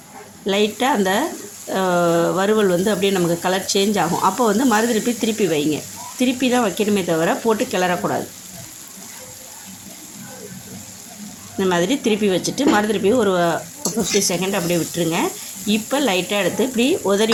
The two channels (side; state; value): both; identical; correlation 1.00